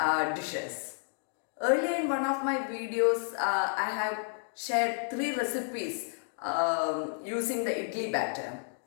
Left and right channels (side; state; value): right; silent; 57 dB below the other